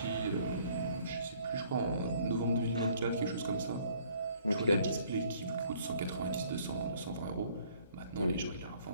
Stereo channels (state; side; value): inverted; both; correlation -0.60